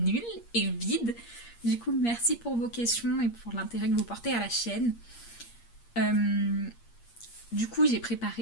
et vide. Du coup merci pour vos questions et pour l'intérêt que vous portez à la chaîne. Du coup j'ai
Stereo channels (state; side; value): late; right; 8.5 ms